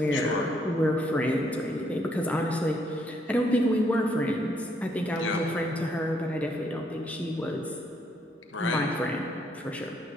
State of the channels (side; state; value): both; normal; correlation 0.71